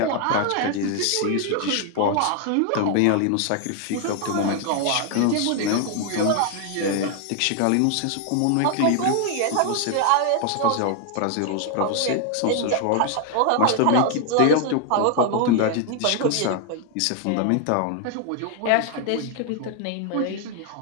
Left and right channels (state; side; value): different; both; correlation 0.00